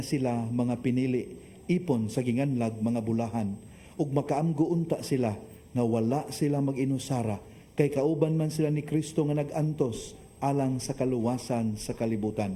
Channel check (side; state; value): both; identical; correlation 1.00